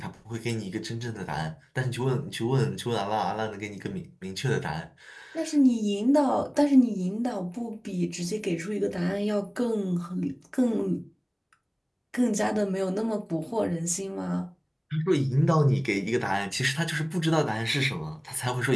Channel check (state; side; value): identical; both; correlation 1.00